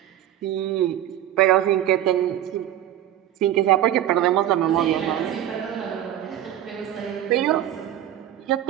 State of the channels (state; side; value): quieter; left; 12.0 dB